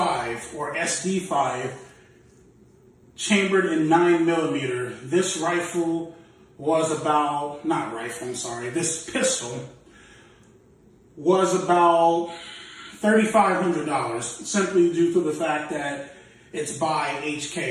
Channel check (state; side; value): identical; both; correlation 1.00